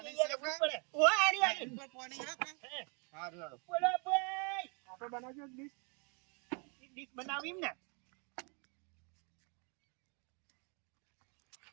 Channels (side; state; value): left; quieter; 34.7 dB